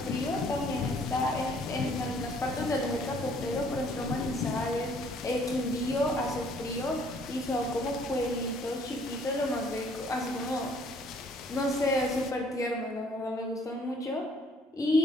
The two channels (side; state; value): both; normal; correlation 0.60